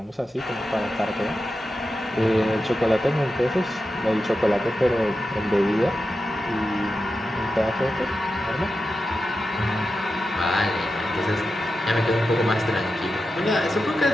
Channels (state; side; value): normal; both; correlation 0.91